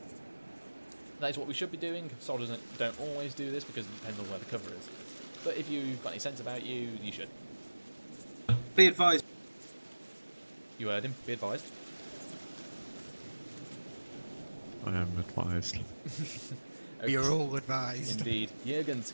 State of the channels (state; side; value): inverted; both; correlation -1.00